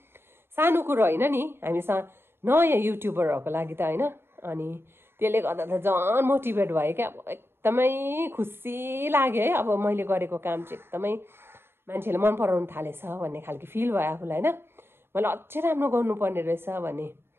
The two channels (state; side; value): late; left; 0.11 ms